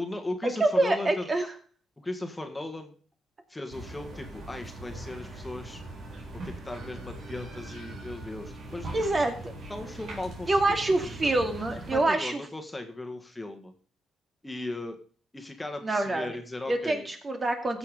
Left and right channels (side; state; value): both; normal; correlation 0.88